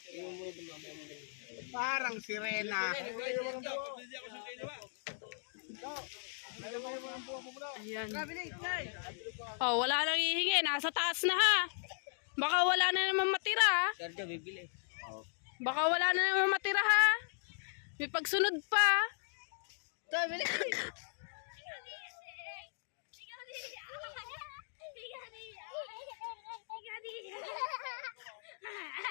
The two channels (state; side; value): silent; right; digital silence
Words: Parang sirena. Ayan. Oh, wala nang hihingi. Nasa taas na ha. Baka wala na naman matira ha. Sergio, bibili. Baka wala na naman matira ha. May pagsunod pa.